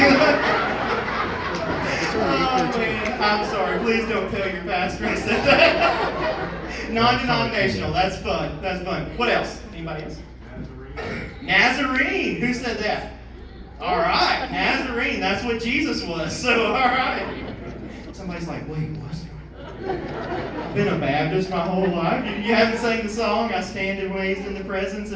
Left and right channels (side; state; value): both; identical; correlation 1.00